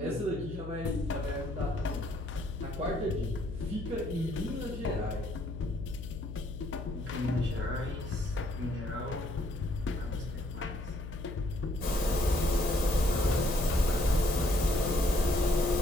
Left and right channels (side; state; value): left; noise; hum, 9 dB below the sound